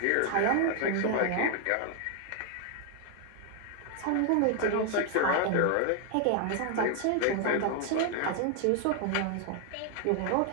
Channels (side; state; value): both; different; correlation 0.00